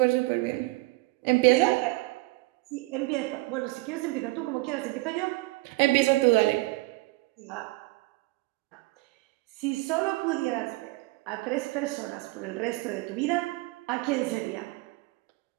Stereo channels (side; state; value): left; quieter; 22.2 dB